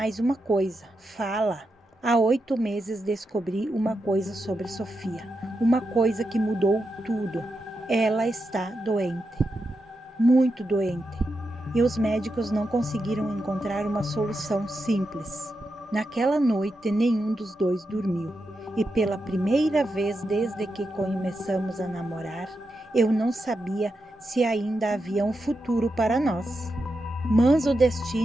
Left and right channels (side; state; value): both; normal; correlation 0.87